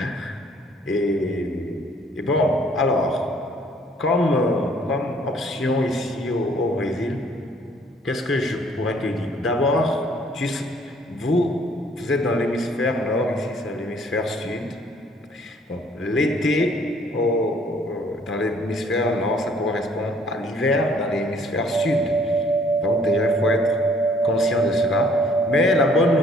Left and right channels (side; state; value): both; normal; correlation 0.60